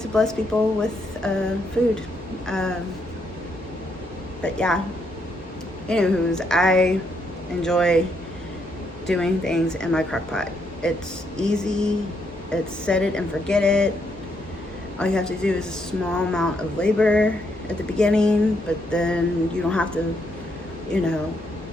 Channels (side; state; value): both; normal; correlation 0.76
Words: to bless people with food. But yeah, anywho's, I enjoy doing things in my crock pot. It's easy. It's set it and forget it. All you have to do is a small amount of labor at the beginning, but then you don't have to,